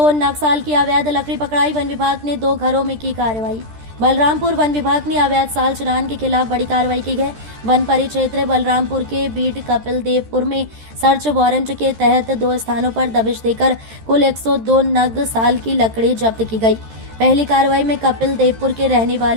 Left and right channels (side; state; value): left; late; 13 ms